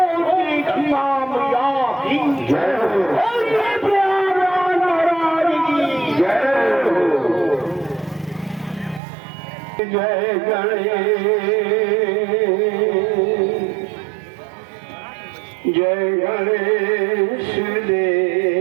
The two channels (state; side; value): drops out; left; at 9.0 s